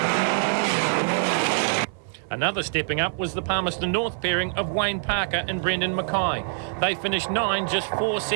Another stepping up was the Palmerston North pairing of Wayne Parker and Brendan Mackay. They finished 9, just 4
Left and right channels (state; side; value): silent; left; 61 dB below the other